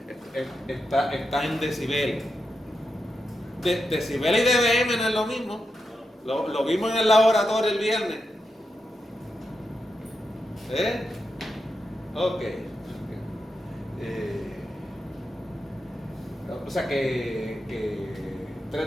Está en decibeles. Decibeles y dBm no es lo mismo. Lo vimos en el laboratorio el viernes. Ok. O sea que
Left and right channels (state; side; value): normal; both; correlation 0.87